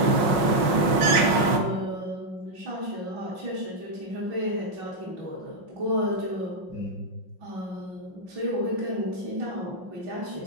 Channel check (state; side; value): late; left; 5.5 ms